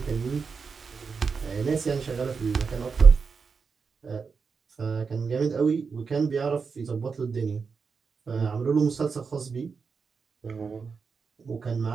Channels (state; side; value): quieter; left; 5.3 dB